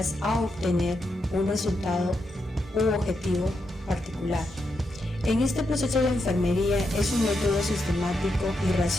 a obtener un resultado u objetivo particular. En este proceso de enfermería es un método sistemático y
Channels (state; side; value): normal; both; correlation 0.83